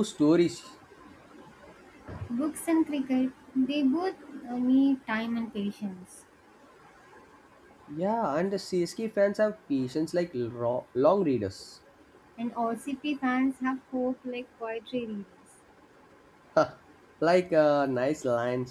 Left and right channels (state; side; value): identical; both; correlation 1.00